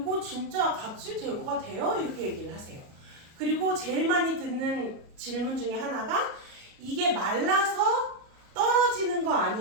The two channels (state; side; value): late; left; 37 ms